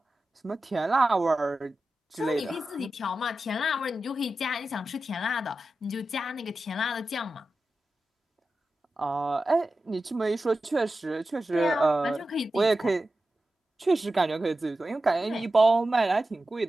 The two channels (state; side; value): normal; both; correlation 0.93